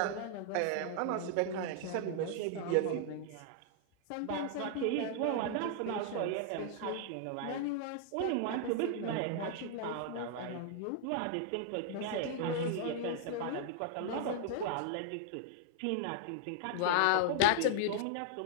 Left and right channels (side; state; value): both; different; correlation 0.00